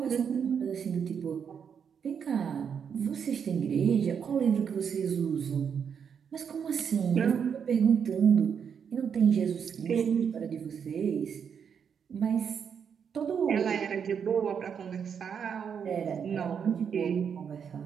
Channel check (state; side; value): quieter; left; 7.2 dB